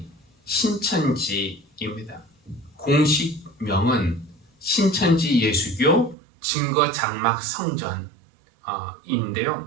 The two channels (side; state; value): left; drops out; at 6.2 s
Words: 신천지입니다. 공식명은 신천지 예수교 증거장막